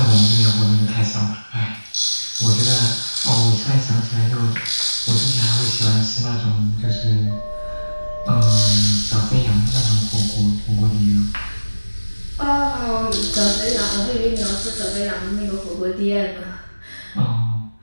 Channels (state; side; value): inverted; both; correlation -1.00